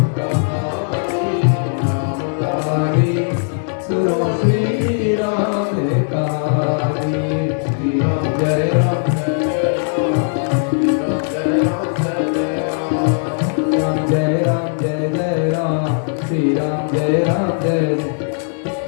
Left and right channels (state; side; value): silent; right; digital silence